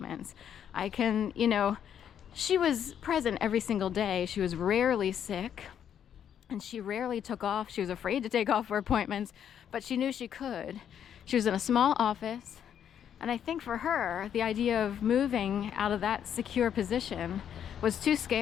I can, she was present every single day. She was rarely sick, and she rarely took off. She was afraid to take off for appointments, but she knew she could. She was in a small office, and I think for her, the idea of moving out of that secure position was too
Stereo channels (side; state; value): right; quieter; 9.1 dB